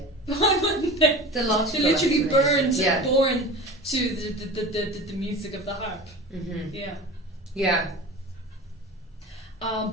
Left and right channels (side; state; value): both; normal; correlation 0.34